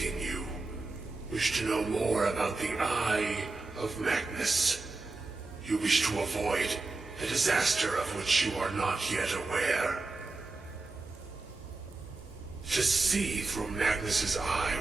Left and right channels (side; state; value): left; quieter; 3.5 dB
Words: you, wish to know more about the Eye of Magnus. You wish to avoid the disaster of which you are not yet aware. To see through Magnus's eye